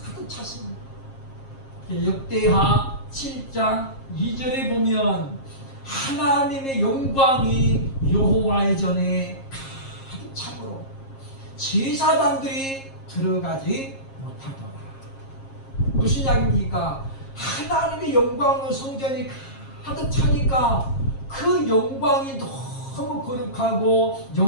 가득 찼습니다. 역대하 7장 2절에 보면 하나님의 영광이 여호와의 전에 참으로 제사장들이 들어가지 못하더라. 무슨 이야기입니까? 하나님의 영광으로 성전이 가득 차니까 그 영광이 너무 거룩하고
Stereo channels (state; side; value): late; right; 7.4 ms